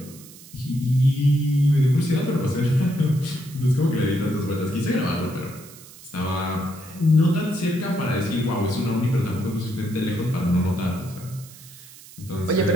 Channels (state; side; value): noise; right; hiss, 19 dB below the sound